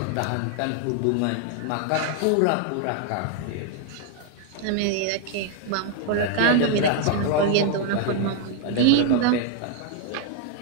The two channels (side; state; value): both; different; correlation 0.00